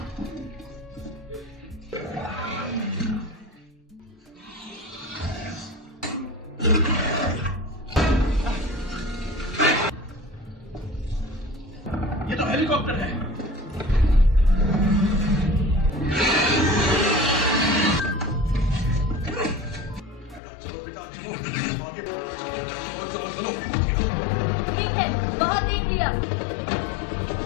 ये तो हेलीकॉप्टर है। बहुत देख लिया।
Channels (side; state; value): right; drops out; at 20.4 s